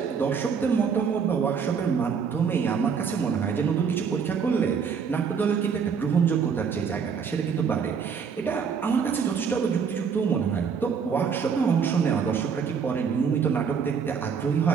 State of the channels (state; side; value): quieter; left; 6.4 dB